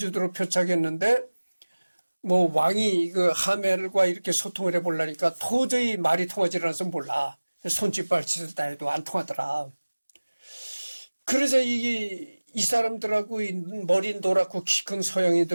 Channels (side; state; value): both; inverted; correlation -1.00